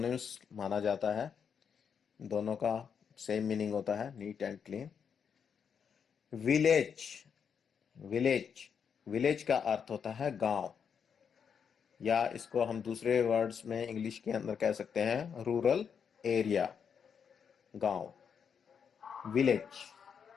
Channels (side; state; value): right; quieter; 7.0 dB